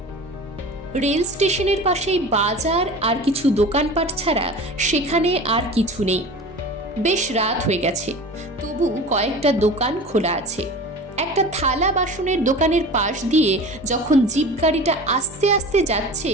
রেল স্টেশনের পাশেই বাজার আর কিছু দোকানপাট ছাড়া সেখানে আর কিছু নেই। বেশ রাত হয়ে গেছে, তবু কয়েকটা দোকান খোলা আছে। একটা থালা বাসনের দোকানের পাশ দিয়ে যখন জিপ গাড়িটা আস্তে আস্তে যাচ্ছে,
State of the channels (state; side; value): normal; both; correlation 0.36